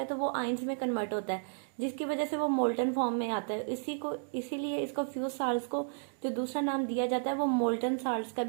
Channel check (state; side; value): silent; left; digital silence